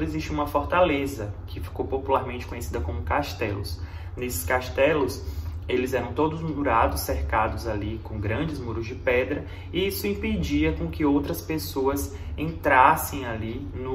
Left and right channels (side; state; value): both; identical; correlation 1.00